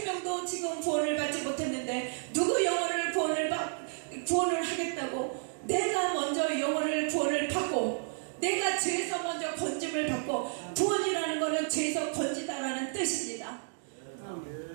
지금 구원을 받지 못했는데 누구 영혼을 구원을 하겠다고 내가 먼저 영혼을 구원을 받고 내가 죄에서 먼저 건짐을 받고 구원이라는 것은 죄에서 건지다라는 뜻입니다.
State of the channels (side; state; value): left; silent; digital silence